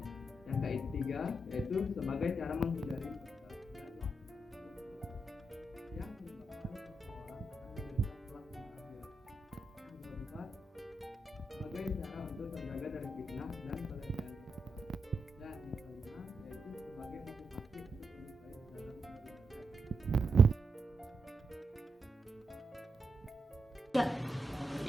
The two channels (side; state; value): both; normal; correlation 0.85